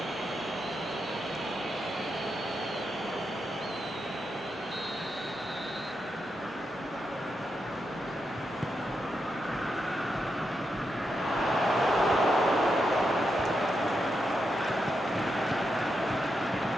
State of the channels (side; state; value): both; normal; correlation 0.85